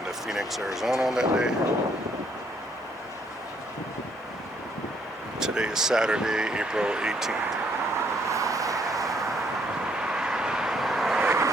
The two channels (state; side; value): normal; both; correlation 0.68